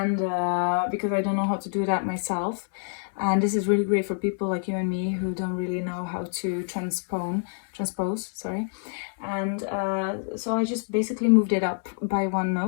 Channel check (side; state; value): right; silent; 61 dB below the other